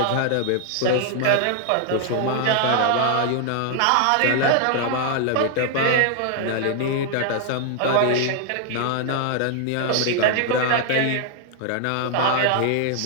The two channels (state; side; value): different; both; correlation 0.00